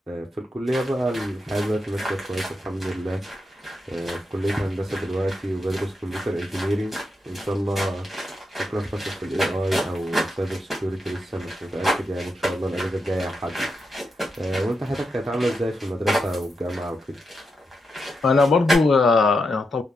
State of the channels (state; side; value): normal; both; correlation 0.85